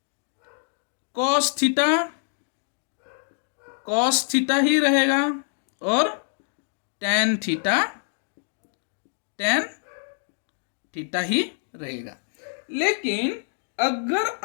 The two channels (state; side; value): silent; right; 61 dB below the other